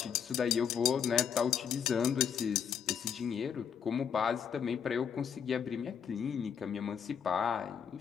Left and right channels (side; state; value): right; quieter; 7.6 dB